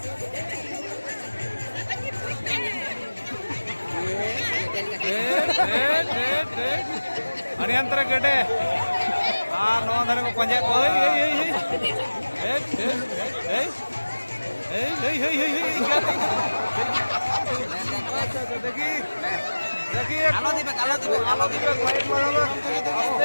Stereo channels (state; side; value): inverted; both; correlation -1.00